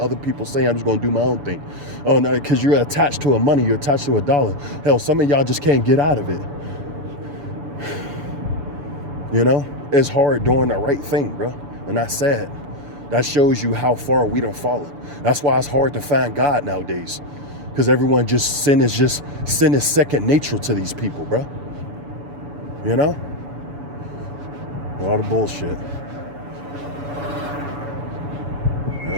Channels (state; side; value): late; left; 7.0 ms